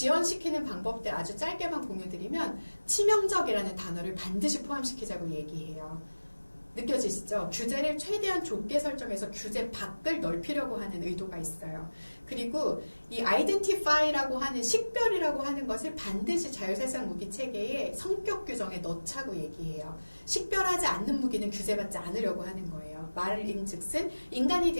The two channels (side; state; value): both; inverted; correlation -1.00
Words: 방법들 아주 짧게만 공유드리면 치명적이라는 단어를 반드시 포함시키자고 얘기해요. 느껴지시죠? 규제를 최대한 좁게 설정해서 규제 밖을 넓히려고 하는 의도가 있어요. 그리고 이 identify라고 하는 식별이라고 하는 것을 반드시 자율살상 무기 체계의 성격 규정에 넣자고 얘기해요. 식별하지 않는 무기는 규제받지 않으려고 하는 거예요. 말인즉슨 인간이